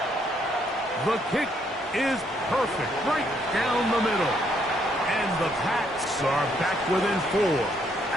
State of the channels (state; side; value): normal; both; correlation 0.71